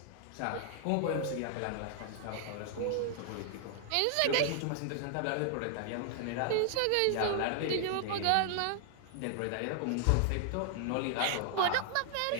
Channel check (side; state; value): both; different; correlation 0.00